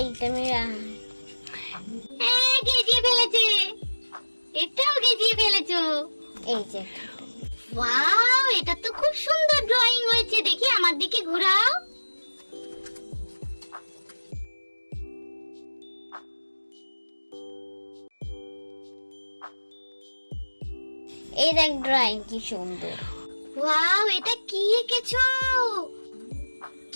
এইটা আমি হ্যাঁ, গেজিয়ে ফেলেছে। এটাও গেজিয়ে ফেলেছো। এই যে একটা। ওয়াও, এটা তো খুব সুন্দর ড্রয়িং হয়েছে। দেখি আমার দিকে ঘোরাও। এই দেখ ড্রয়িং কি সুন্দর। ওয়াও, এটা কি এঁকেছো?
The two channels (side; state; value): both; inverted; correlation -1.00